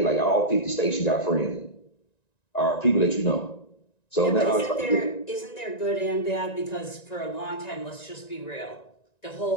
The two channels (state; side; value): late; right; 1.9 ms